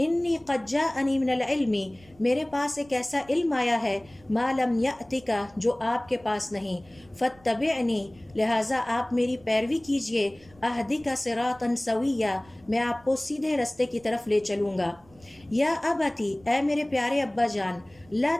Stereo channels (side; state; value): right; noise; rumble, 27 dB below the sound